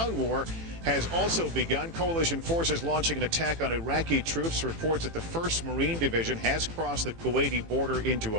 war has also begun. Coalition forces launching an attack on Iraqi troops. Reports that the 1st Marine Division has crossed the Kuwaiti border into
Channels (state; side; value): late; left; 18 ms